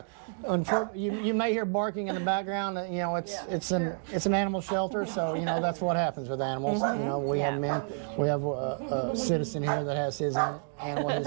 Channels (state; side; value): silent; left; digital silence